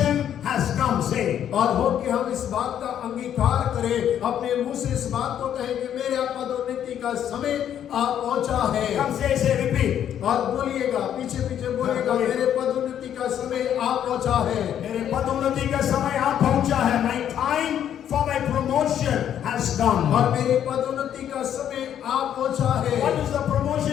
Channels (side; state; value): right; quieter; 9.9 dB